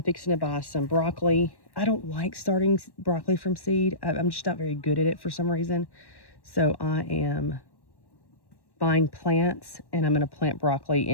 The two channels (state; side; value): late; right; 1.1 ms